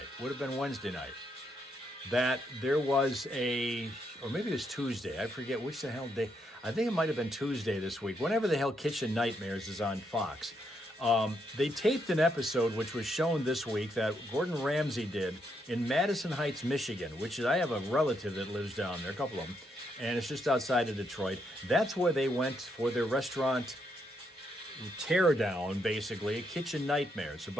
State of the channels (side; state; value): both; normal; correlation 0.78